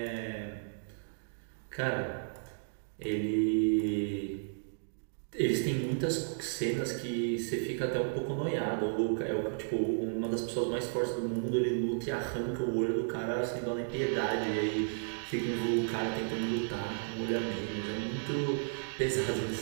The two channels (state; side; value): silent; left; digital silence